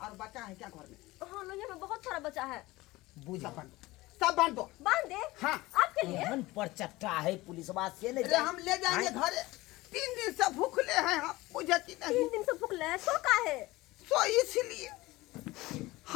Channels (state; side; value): quieter; right; 19.7 dB